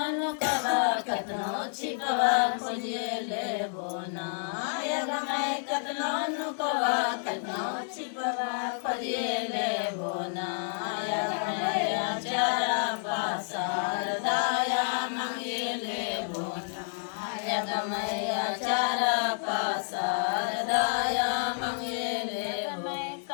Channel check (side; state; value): right; silent; digital silence